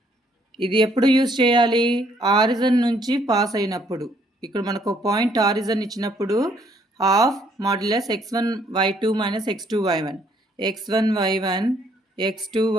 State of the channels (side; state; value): both; normal; correlation 0.66